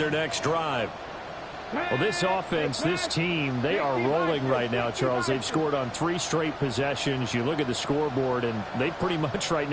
next drive. Well, this offense, this team, they are rolling right now, Charles. They've scored on 3 straight possessions. You look at the scoreboard, and they pretty much right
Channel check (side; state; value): both; identical; correlation 1.00